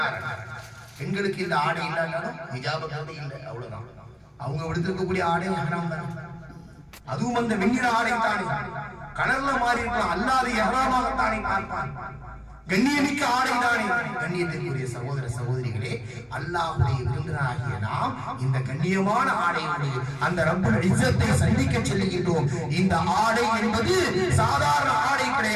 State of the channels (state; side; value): identical; both; correlation 1.00